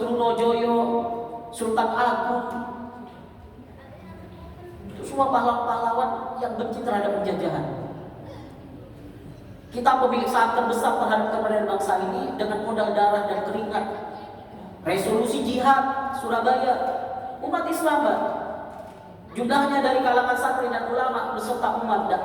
Sultan Agung. Semua pahlawan-pahlawan yang benci terhadap penjajahan. Kita pemilik saham terbesar terhadap kemerdekaan bangsa ini dengan modal darah dan keringat. Resolusi jihad Surabaya, umat Islam, Pak. Jumlahnya dari kalangan santri dan ulama beserta umat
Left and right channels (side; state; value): both; identical; correlation 1.00